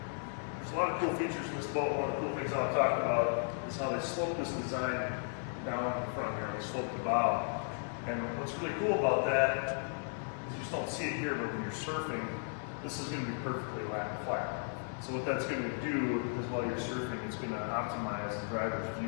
a lot of cool features in this boat. One of the cool things I'll talk about is how they slope this design down in the front here. They slope the bow. And what's really cool about that is you just don't see it here, but when you're surfing, this is going to be perfectly flat. So what that's going to do is while you're surfing, it's going to optimize the driver's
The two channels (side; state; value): right; silent; 54 dB below the other